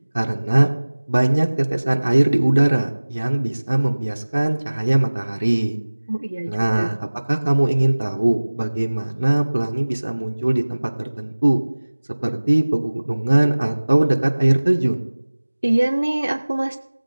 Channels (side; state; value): both; inverted; correlation -1.00